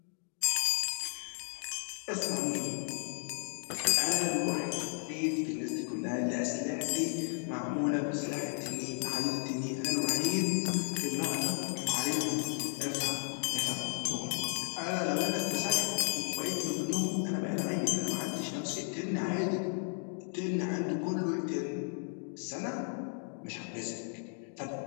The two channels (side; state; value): right; silent; 55 dB below the other